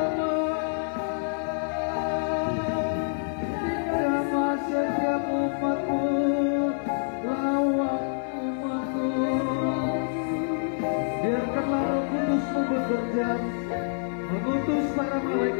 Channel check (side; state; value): right; silent; 60 dB below the other